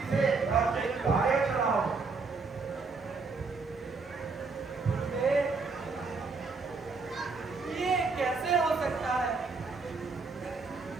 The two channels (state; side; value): quieter; left; 4.3 dB